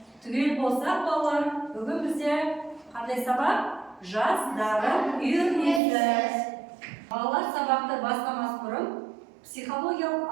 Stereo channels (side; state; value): left; drops out; at 5.8 s